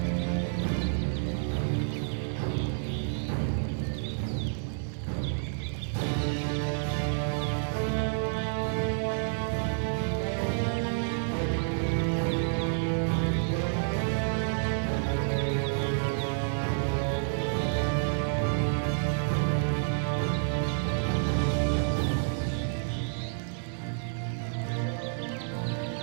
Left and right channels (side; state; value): left; silent; digital silence